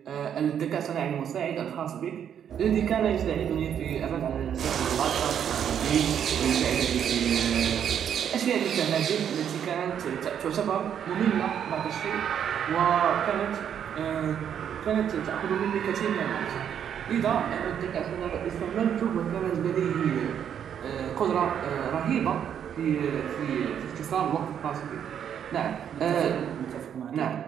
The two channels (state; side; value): quieter; left; 8.8 dB